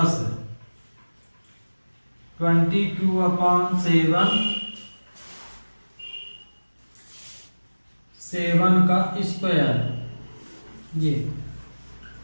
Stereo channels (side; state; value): both; inverted; correlation -1.00